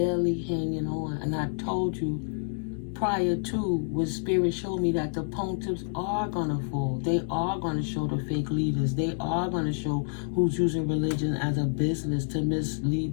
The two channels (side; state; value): right; silent; digital silence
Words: hanging on. And I told you, prior to, when Spirit showed me that the pontiffs are going to fall. They are going to show the fake leaders. They are going to show who's using religion as a business to